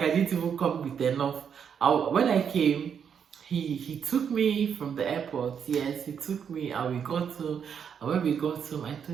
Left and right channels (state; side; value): quieter; left; 7.5 dB